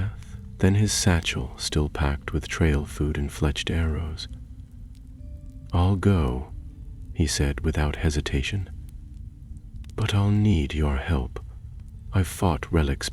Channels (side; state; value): both; identical; correlation 1.00